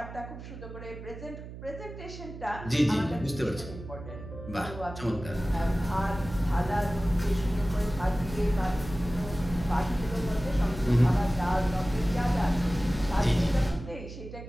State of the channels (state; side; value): noise; right; hum, 12 dB below the sound